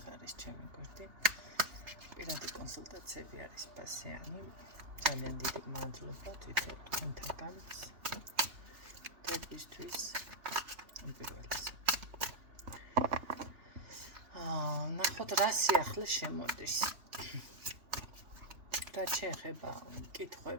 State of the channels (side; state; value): left; late; 3.2 ms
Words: არის ჩემი გვერდი. პირადი კონსულტაციები არის პასიანი. ძალიან დიდი მადლობა თვითონ თქვენთაგან დღეისთვის პირველს. ნახოთ რა სიახლე შემოდის. რა შეეხება